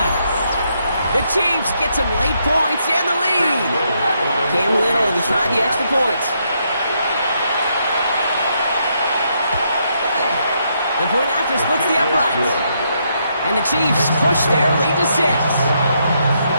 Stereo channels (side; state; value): both; inverted; correlation -0.77